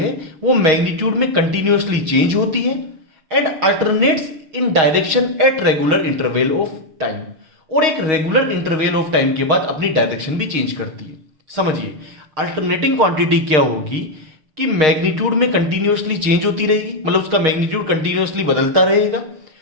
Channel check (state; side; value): late; left; 6.3 ms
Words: वो मैग्नीट्यूड में कंटिन्यूअसली चेंज होती है and alternates in direction at regular interval of time, और एक रेगुलर इंटरवल ऑफ टाइम के बाद अपनी डायरेक्शन भी चेंज करती है। समझिए, अल्टरनेटिंग क्वांटिटी क्या होगी कि मैग्नीट्यूड में कंटिन्यूअसली चेंज होती रहेगी, मतलब उसका मैग्नीट्यूड कंटिन्यूअसली बदलता रहेगा